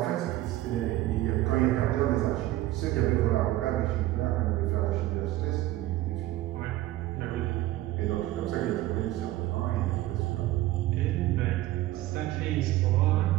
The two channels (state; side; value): quieter; left; 16.0 dB